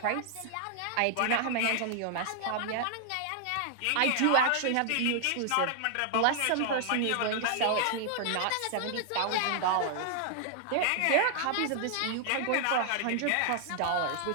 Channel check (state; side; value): different; both; correlation 0.00